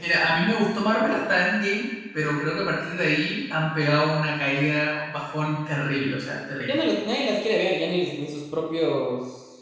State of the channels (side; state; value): both; identical; correlation 1.00